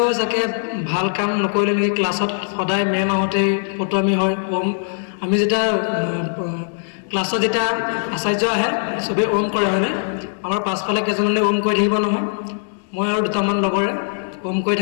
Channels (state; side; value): silent; right; 65 dB below the other